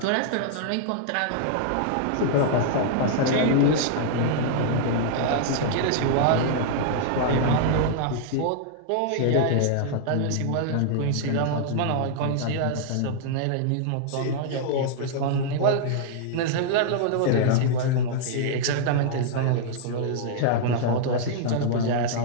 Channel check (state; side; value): different; both; correlation -0.01